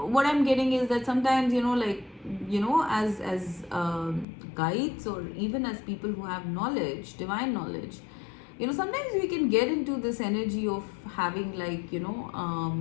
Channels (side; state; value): right; drops out; at 4.2 s